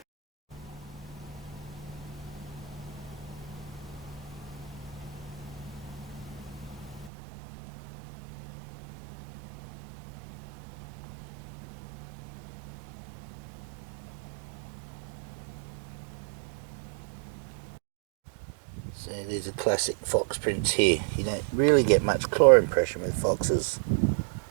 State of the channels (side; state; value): left; drops out; at 7.1 s